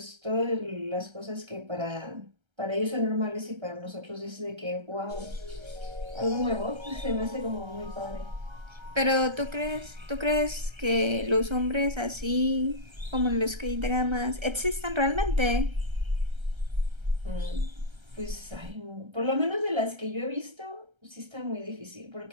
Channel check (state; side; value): late; left; 1.3 ms